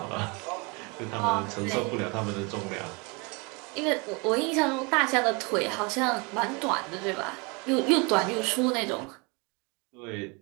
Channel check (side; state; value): left; quieter; 29.6 dB